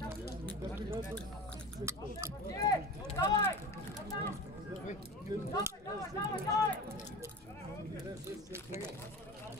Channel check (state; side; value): normal; both; correlation 0.32